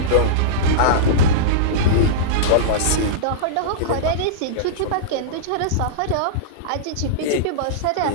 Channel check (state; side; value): different; both; correlation -0.04